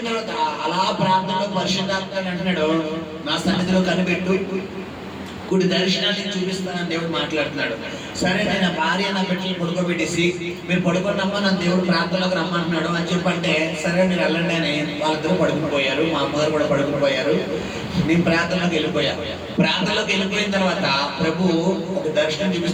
తర్వాత అలా ప్రార్థనలో పరిశుద్ధాత్మ అంటున్నాడు, నా సన్నిధిలో కనిపెట్టు, కుడి దర్శనాన్ని చూపిస్తానని దేవుడు మాట్లాడుతున్నాడు. సరే, నేను భార్య నా బిడ్డలు పడుకోబెట్టేసి, మీరు పడుకోండమ్మా, నన్ను దేవుడు ప్రార్థనలోకి రమ్మంటున్నాడు అని చెప్పంటే, సరే మీరు వెళ్ళండి అని వాళ్ళిద్దరూ పడుకుపోయారు. మా అమ్మగారు కూడా పడుకుపోయారు. నేను ప్రార్థనలోకి వెళ్ళిపోయా. ప్రార్థనలోకి వెళ్ళిపోయిన తర్వాత ప్రభు ఒక దర్శనం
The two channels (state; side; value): identical; both; correlation 1.00